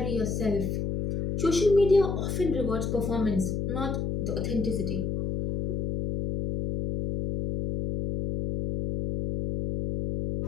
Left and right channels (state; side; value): noise; left; hum, 2 dB below the sound